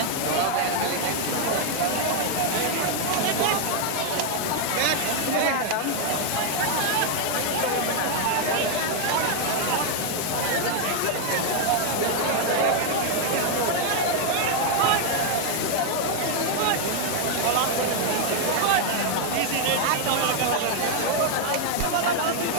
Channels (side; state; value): both; different; correlation 0.00